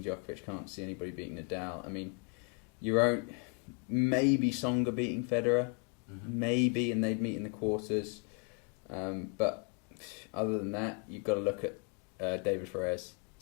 Djokovic. Can't see anybody beating Nadal. I mean, maybe Tsonga beating Federer, maybe, and they'd meet in the quarters. But other than that, you've got to look at David Ferrez.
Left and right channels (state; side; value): quieter; right; 36.3 dB